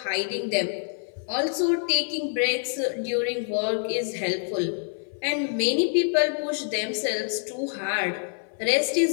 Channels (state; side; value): silent; right; 61 dB below the other